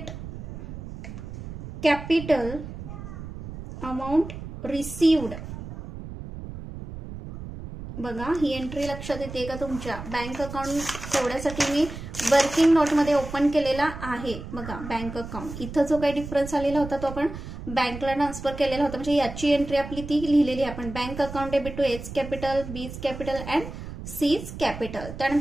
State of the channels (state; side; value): noise; right; rumble, 10 dB below the sound